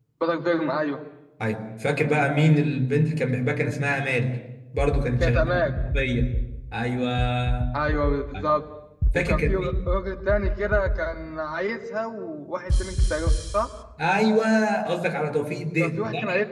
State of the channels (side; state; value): both; identical; correlation 1.00